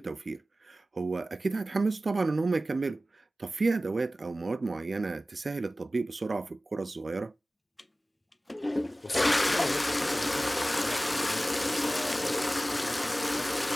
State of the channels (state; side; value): normal; both; correlation 0.96